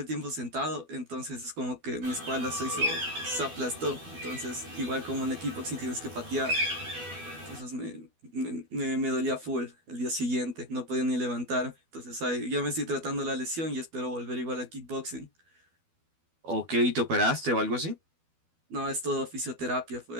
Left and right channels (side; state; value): left; late; 12 ms